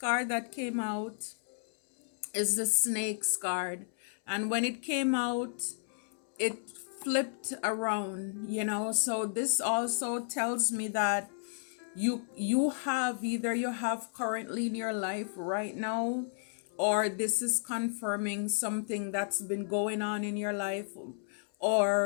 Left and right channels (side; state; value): right; silent; 56 dB below the other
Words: that came out is the Snake's card. And when it came out, it flipped around, so this also tells me that you have either you have currently in your life right now, or this is confirming something that's been going on in your life,